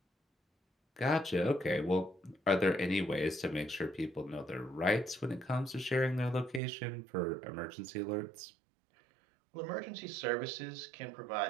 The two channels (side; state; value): left; drops out; at 6.6 s